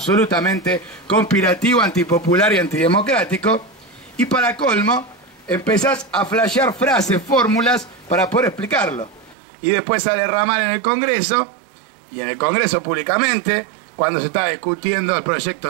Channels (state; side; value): drops out; left; at 9.3 s